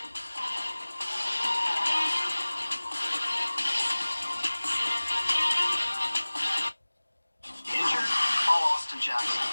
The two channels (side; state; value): both; inverted; correlation -1.00